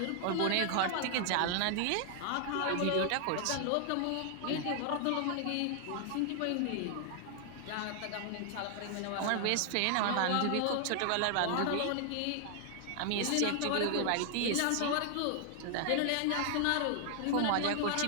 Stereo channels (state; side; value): different; both; correlation 0.00